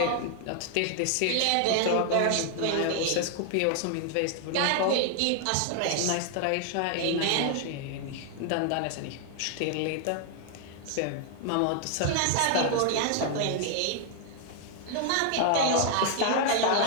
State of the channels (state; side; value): different; both; correlation 0.00